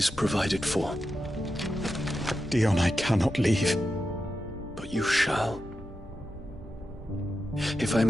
provided for. Dion, I cannot leave. But you shall. If I'm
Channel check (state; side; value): normal; both; correlation 0.89